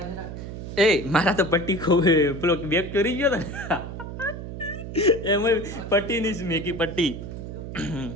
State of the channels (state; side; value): noise; right; hum, 8 dB below the sound